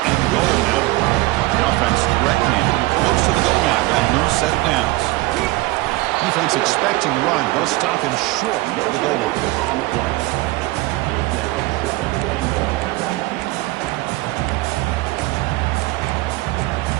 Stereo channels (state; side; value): quieter; left; 20.1 dB